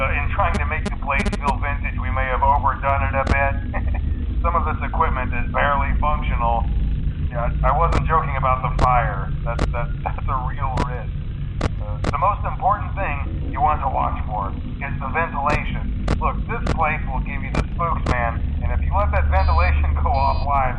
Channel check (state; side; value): identical; both; correlation 1.00